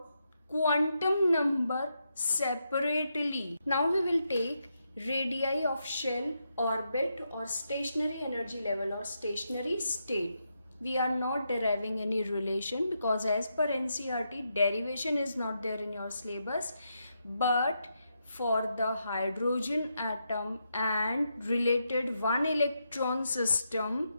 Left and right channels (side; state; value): both; inverted; correlation -0.83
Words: quantum number separately. Now we will take radii of shell, orbit or stationary energy level or stationary state. We are not deriving any relation because as per NCERT, derivation is not there in your syllabus, but for the hydrogen atom and related one electron system,